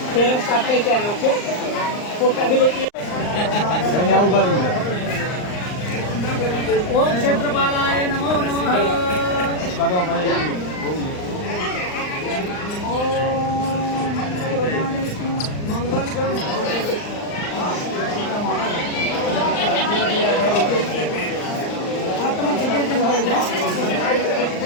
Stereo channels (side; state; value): right; late; 39 ms